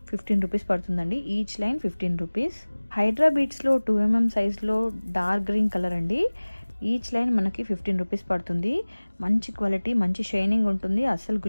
15 రూపీస్ పడుతుందండి. Each line 15 rupees. హైడ్రా బీడ్స్లో 2 mm సైజ్లో డార్క్ గ్రీన్ కలర్ అండి, ఈచ్ లైన్ మనకి 15 రూపీస్ పడుతుంది. మంచి క్వాలిటీ, మంచి షైనింగ్ ఉంటుంది, అస్సలు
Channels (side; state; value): both; inverted; correlation -1.00